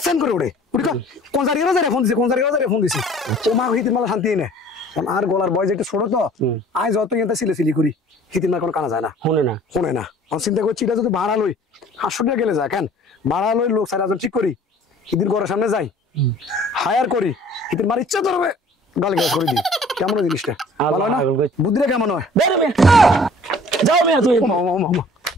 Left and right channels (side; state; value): both; normal; correlation 0.51